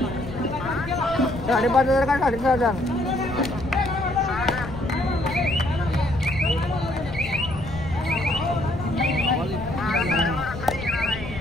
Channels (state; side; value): noise; left; rumble, 11 dB below the sound